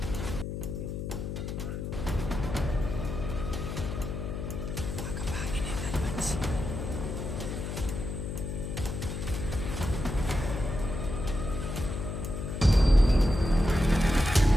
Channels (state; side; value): noise; left; hum, 5 dB below the sound